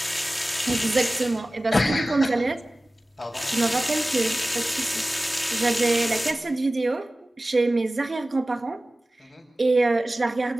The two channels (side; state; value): both; normal; correlation 0.97